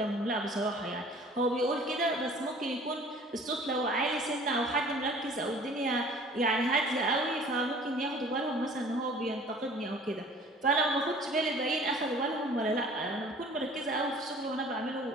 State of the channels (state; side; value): normal; both; correlation 0.49